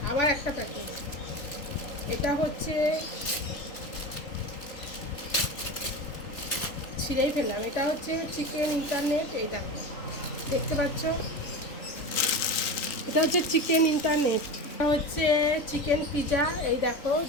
আবার একটা প্যাকেট। এটা হচ্ছে ছিঁড়েই ফেললাম। এটা হচ্ছে চিকেন ইন্টারনেট, এই দেখো দেখতে পাচ্ছ। এটা হচ্ছে চিকেন ইন্টারনেট। এটা হচ্ছে চিকেন পিজা, এই দেখো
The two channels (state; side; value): late; right; 3.4 ms